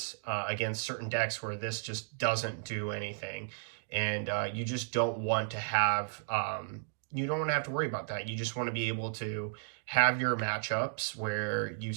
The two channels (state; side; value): silent; left; digital silence